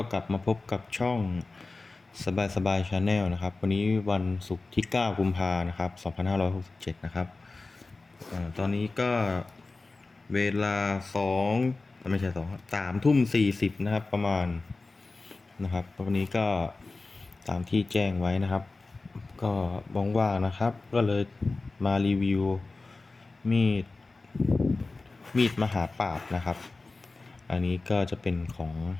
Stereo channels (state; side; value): quieter; right; 3.5 dB